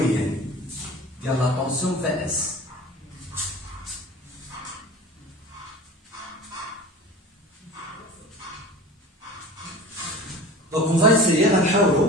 ديال لا طونسيون في اس. دونك اون فا اسيي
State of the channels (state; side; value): normal; both; correlation 0.38